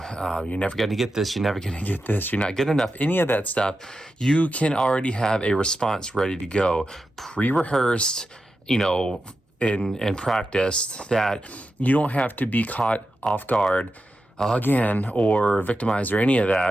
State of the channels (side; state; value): both; normal; correlation 0.89